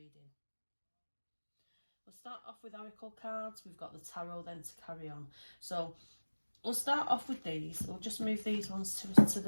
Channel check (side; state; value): both; inverted; correlation -1.00